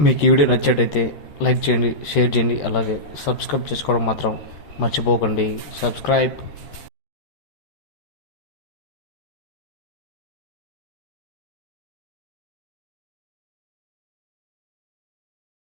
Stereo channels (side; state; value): right; late; 13 ms